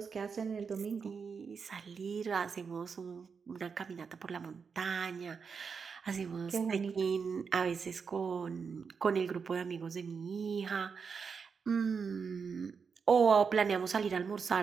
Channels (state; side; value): quieter; left; 5.8 dB